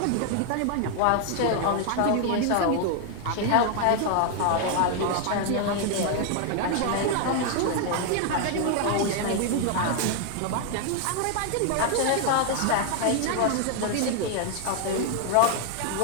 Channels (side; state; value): both; different; correlation 0.00